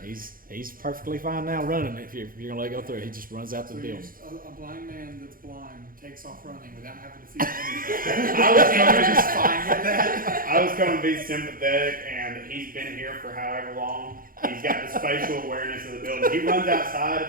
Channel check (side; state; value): left; late; 0.41 ms